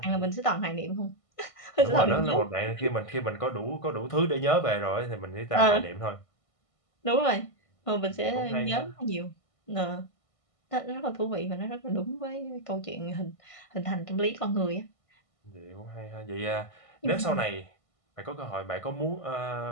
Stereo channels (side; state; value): right; late; 1.5 ms